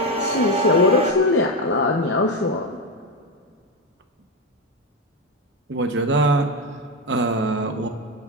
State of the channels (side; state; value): both; normal; correlation 0.11